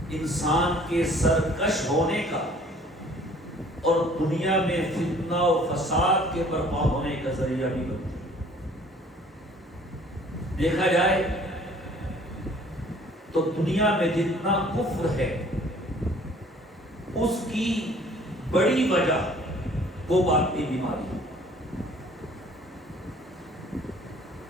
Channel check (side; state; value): both; normal; correlation 0.54